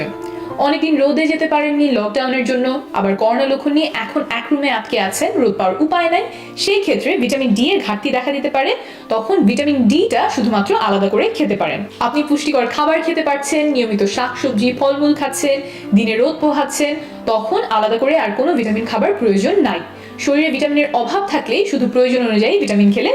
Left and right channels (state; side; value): identical; both; correlation 1.00